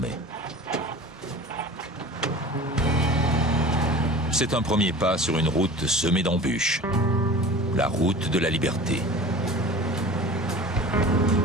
C'est un premier pas sur une route semée d'embûches. La route de la liberté.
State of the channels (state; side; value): normal; both; correlation 0.38